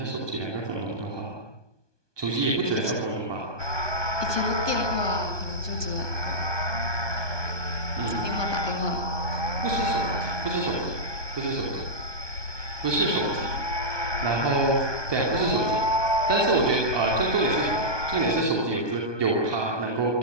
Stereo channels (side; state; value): left; late; 1.2 ms